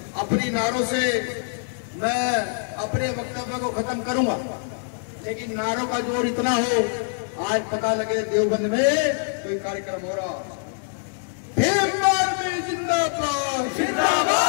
अपनी नारों से मैं अपने वक्तव्य को खत्म करूंगा, लेकिन नारों का जोर इतना हो, आज पता लगे देवबंद में कोई कार्यक्रम हो रहा। भीम आर्मी जिंदाबाद,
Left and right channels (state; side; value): silent; right; digital silence